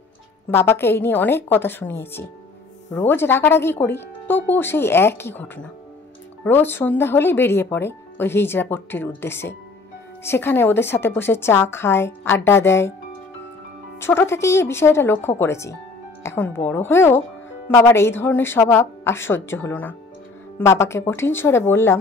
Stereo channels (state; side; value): quieter; right; 3.7 dB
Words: বাবাকে এই নিয়ে অনেক কথা শুনিয়েছি। রোজ রাগারাগি করি, তবুও সেই একই ঘটনা। রোজ সন্ধ্যা হলেই বেরিয়ে পড়ে ওই হিজড়া পট্টির উদ্দেশ্যে। সেখানে ওদের সাথে বসে চা খায়, আড্ডা দেয়। ছোট থেকেই এই বিষয়টা লক্ষ্য করেছি। এখন বড় হয়েও বাবার এই ধরনের স্বভাব আর সহ্য হলো না। বাবাকে কঠিন স্বরে বললাম,